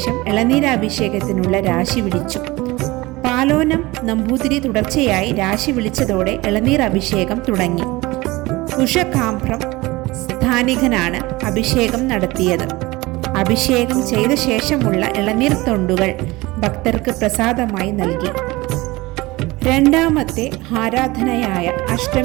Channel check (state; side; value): quieter; left; 21.2 dB